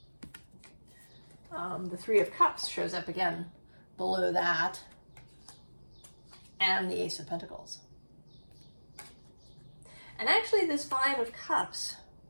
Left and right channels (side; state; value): both; inverted; correlation -1.00